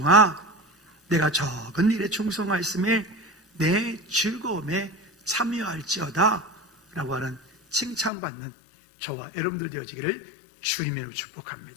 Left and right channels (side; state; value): right; drops out; at 8.1 s